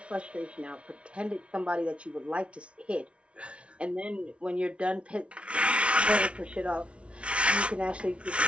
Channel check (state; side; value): late; left; 0.060 ms